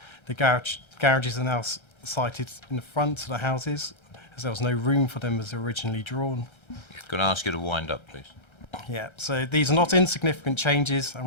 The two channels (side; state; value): right; late; 1.3 ms